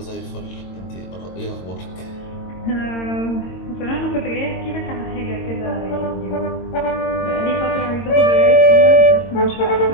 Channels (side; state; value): right; late; 22 ms